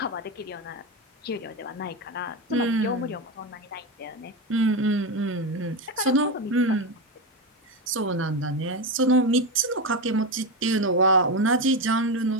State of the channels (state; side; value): normal; both; correlation 0.14